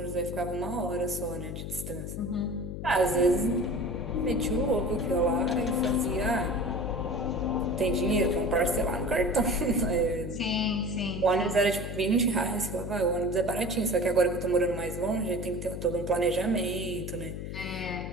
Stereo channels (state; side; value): noise; left; hum, 7 dB below the sound